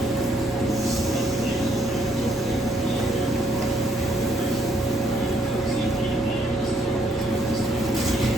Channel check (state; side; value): normal; both; correlation 0.70